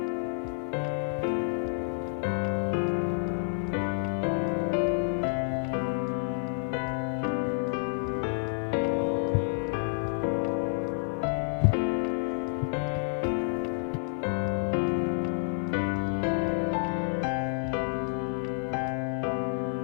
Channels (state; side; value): silent; right; digital silence